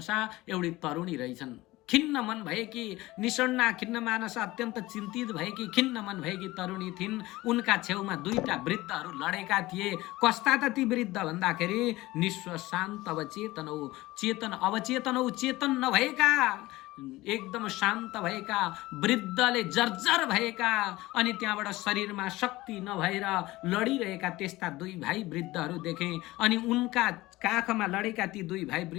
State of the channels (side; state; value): right; quieter; 18.9 dB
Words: एउटी तरुणी रहेछन्, खिन्न मन भएकी, निषण्णा खिन्न मानस अत्यन्त चिन्तित भएकी, खिन्न मन भएकी तरुणी थिइन्। उनका छेउमा दुईटा वृद्धहरू लडेका थिए। कस्ता त ती वृद्ध भन्दाखेरि निस्व शान्त अवचेतनौ, चेतन अवचेतनौ, चेतन नभएका, एकदम शान्त भएका, वृद्धले जर्जर भएका अनि त्यहाँबाट शरीरमा शक्ति नभएर लडिरहेका त्यस्ता दुई भाइ वृद्धहरू देखे। अनि उनका काखमा लडेका ती दुई भाइ